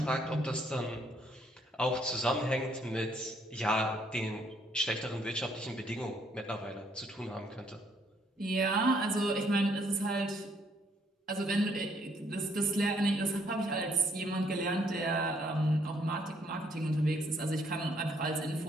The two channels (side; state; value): both; normal; correlation 0.68